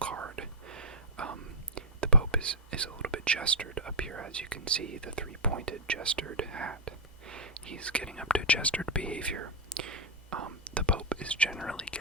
The Pope is a little bit gestured up here, as you can see, the three-pointed gestured hat. He's getting up to gestured behavior. The Pope is generally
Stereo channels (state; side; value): normal; both; correlation -0.05